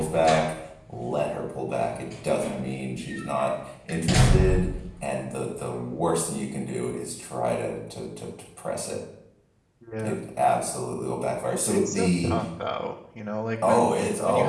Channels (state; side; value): identical; both; correlation 1.00